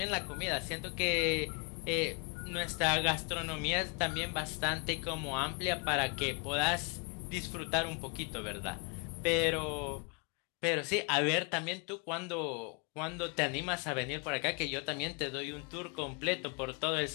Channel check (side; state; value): right; quieter; 33.2 dB